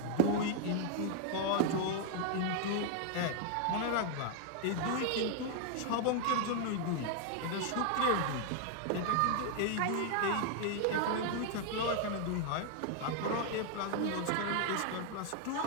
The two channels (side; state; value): both; different; correlation 0.00